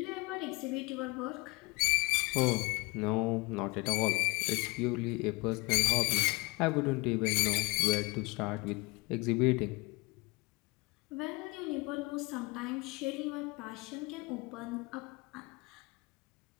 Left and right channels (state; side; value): quieter; right; 26.1 dB